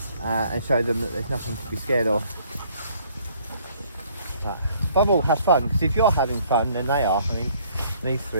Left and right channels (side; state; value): both; inverted; correlation -0.60